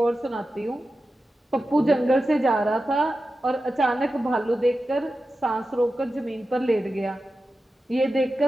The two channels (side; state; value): both; normal; correlation 0.92